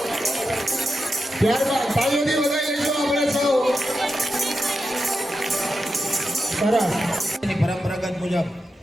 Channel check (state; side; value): normal; both; correlation 0.89